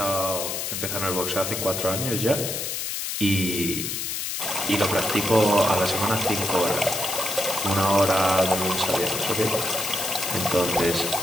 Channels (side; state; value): left; noise; hiss, 3 dB below the sound